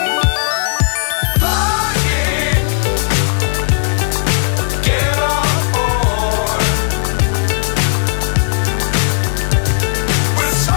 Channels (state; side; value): silent; right; 66 dB below the other